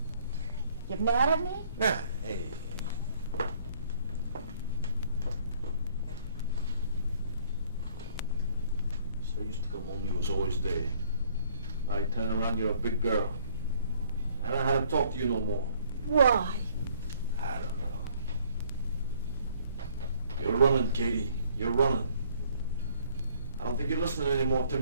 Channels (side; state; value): both; inverted; correlation -0.61